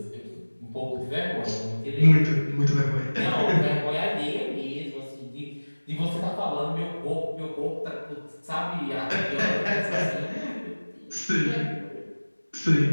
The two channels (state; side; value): inverted; both; correlation -1.00